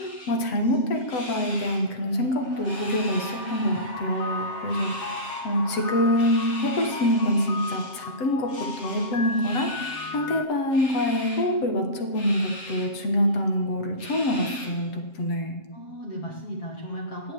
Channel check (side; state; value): right; late; 7.5 ms